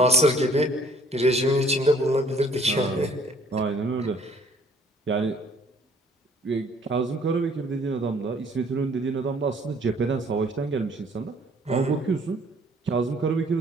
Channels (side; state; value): both; normal; correlation 0.59